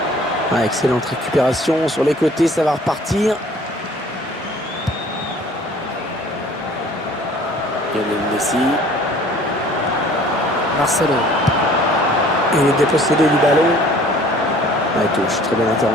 Ah, excellente récupération sur les côtés, ça va repartir. Lionel Messi. Marcelo. Il est dépossédé du ballon. Ah, touche, très bonne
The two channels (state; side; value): normal; both; correlation 0.52